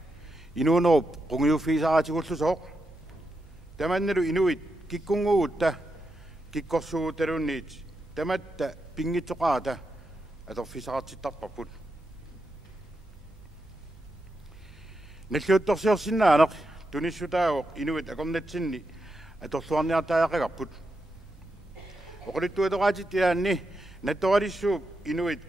инуунеруп қунгиуффисаратигуллусооқ таманналу инуит киккунгугутта киккорсугуталунниит таматта пингитсоқаата аторфисаратситтарпарпут наллуутторсиорсиннаанеқ туниссутаагоқ инуит акорнатсинни аторлуарниартаақагарпут оқулиттуатораатиттиаанни натторалиссууп инуит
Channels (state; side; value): normal; both; correlation 0.86